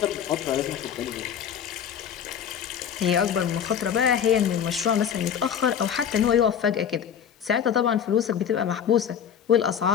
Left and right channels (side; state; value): right; quieter; 8.5 dB